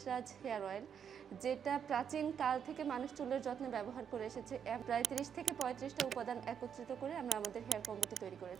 হেয়ার অয়েল, যেটা প্রাচীন কাল থেকে মানুষ চুলের যত্নে ব্যবহার করে এসেছে। প্রায় 30 থেকে 35টা উপাদান একত্রিত করে আমরা আমাদের হেয়ার কম্বোটি তৈরি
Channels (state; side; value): quieter; left; 7.9 dB